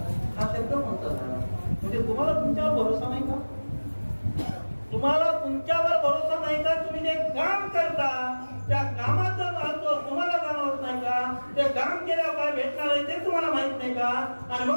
हा शब्द म्हणतात. म्हणजे तुम्हाला तुमच्यावर भरोसा नाही का? तुम्हाला तुमच्यावर भरोसा नाही का? तुम्ही जे काम करता त्या कामाचं महत्व तुम्हाला जाणवत नाही का? ते काम केल्यावर काय भेटणार आहे ते तुम्हाला माहित नाही का? आणि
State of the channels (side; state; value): both; inverted; correlation -1.00